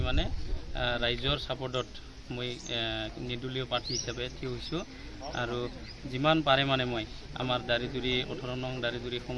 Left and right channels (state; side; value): identical; both; correlation 1.00